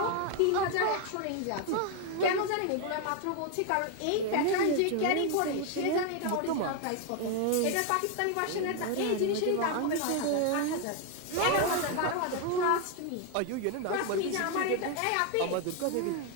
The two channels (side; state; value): both; different; correlation 0.01